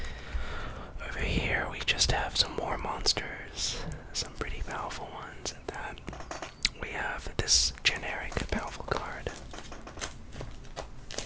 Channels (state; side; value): identical; both; correlation 1.00